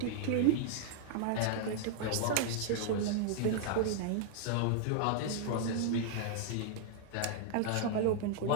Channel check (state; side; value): different; both; correlation -0.01